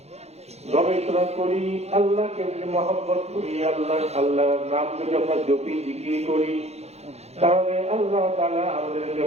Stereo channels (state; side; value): late; left; 0.31 ms